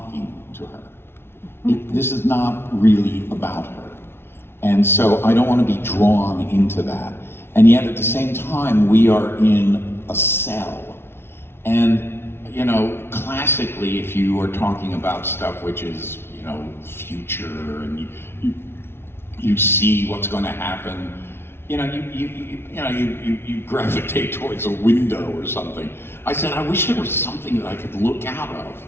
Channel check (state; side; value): late; right; 0.12 ms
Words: to her. This is not really about her. And so I don't want to be drawn into that. And yet at the same time, we are in a cell. And, you know, classically, if you are talking about stuff which is, you know, future, and you see what's going to happen, you know, you gravitate towards a window or something. I said, I wish there was something that I could look out of.